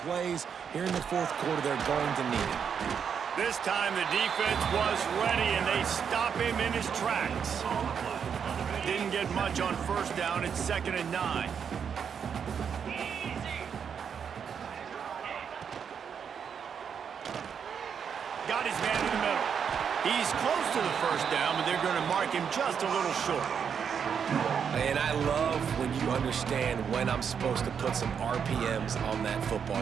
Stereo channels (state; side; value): quieter; left; 7.2 dB